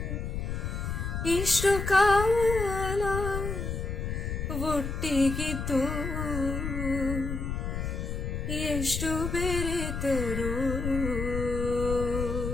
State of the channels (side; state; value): left; noise; rumble, 3 dB below the sound